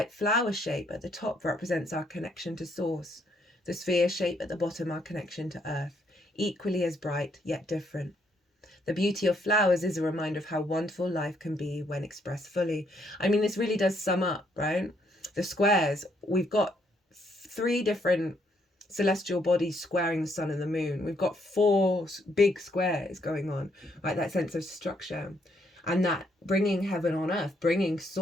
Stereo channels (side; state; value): both; normal; correlation 0.72